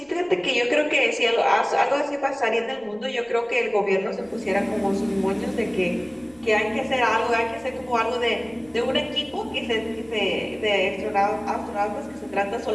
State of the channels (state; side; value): noise; right; rumble, 29 dB below the sound